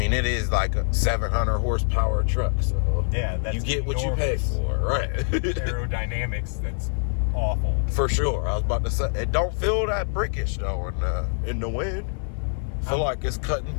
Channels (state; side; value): silent; right; digital silence